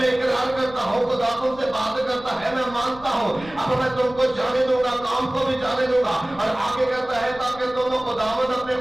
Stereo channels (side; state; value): left; noise; rumble, 19 dB below the sound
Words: میں اقرار کرتا ہوں خدا تم سے بات کرتا ہے, میں مانتا ہوں, اب میں تم کو جانے دوں گا, کام کو بھی جانے دوں گا. اور آگے کہتا ہے تاکہ تم خداوند اپنے